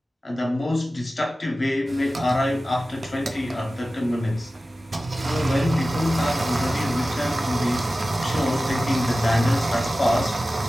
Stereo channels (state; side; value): normal; both; correlation 0.95